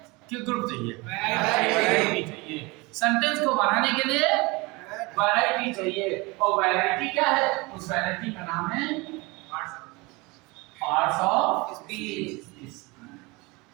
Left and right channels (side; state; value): left; quieter; 25.0 dB